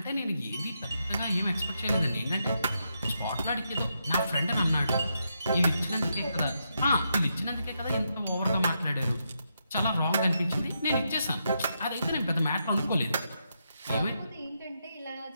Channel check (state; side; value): inverted; both; correlation -0.82